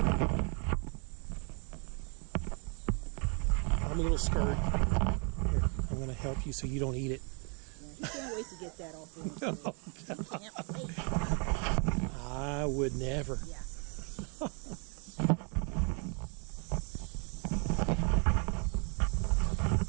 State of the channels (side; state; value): left; quieter; 37.1 dB